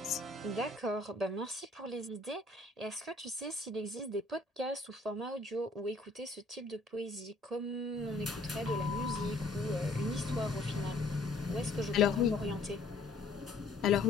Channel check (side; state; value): right; quieter; 3.2 dB